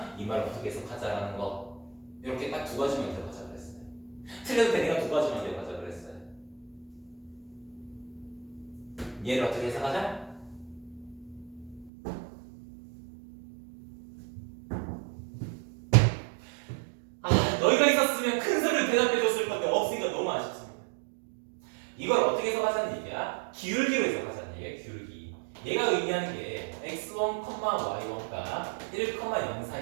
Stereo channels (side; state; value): left; drops out; at 11.9 s